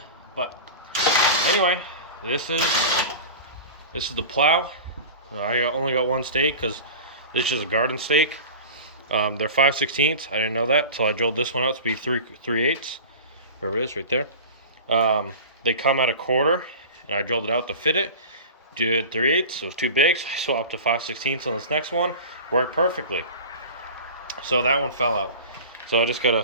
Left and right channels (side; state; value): both; inverted; correlation -0.33